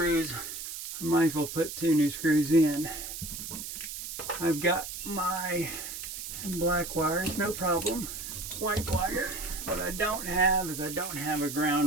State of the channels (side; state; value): right; noise; hiss, 8 dB below the sound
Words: I might as well put 2 new screws in. I've got my black wires, no problem. White wire. What I don't have is I don't have a